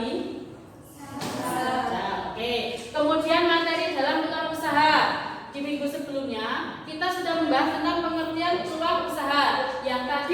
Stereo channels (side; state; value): both; identical; correlation 1.00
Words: Oke. Kemudian materi dalam peluang usaha. Di minggu sebelumnya kita sudah membahas tentang pengertian peluang usaha yang